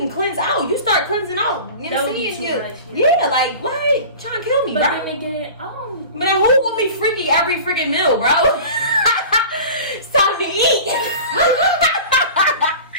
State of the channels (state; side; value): inverted; both; correlation -0.38